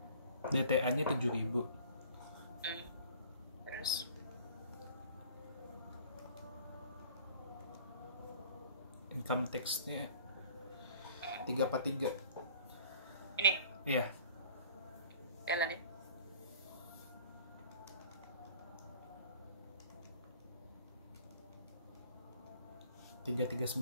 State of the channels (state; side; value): inverted; both; correlation -0.49